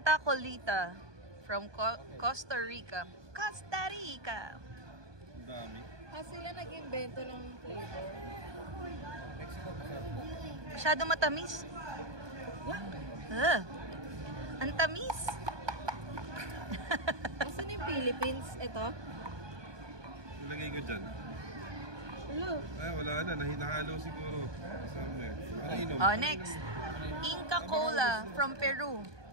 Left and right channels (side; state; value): left; late; 1.2 ms